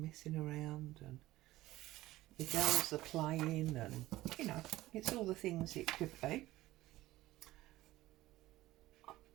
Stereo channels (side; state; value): left; quieter; 16.7 dB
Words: messing around, and the girls are playing, and you know, it's all the things it could be.